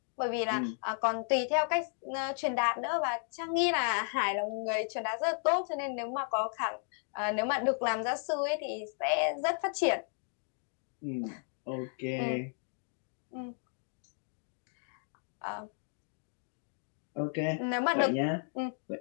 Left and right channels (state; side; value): silent; right; 55 dB below the other